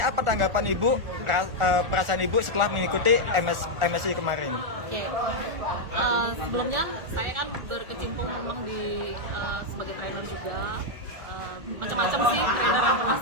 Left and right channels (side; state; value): left; late; 1.4 ms